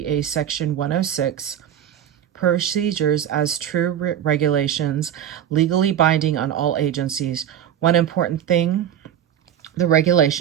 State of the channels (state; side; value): quieter; left; 10.1 dB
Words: Section 106 procedures as true regulations, legally binding on all agencies. One important thing the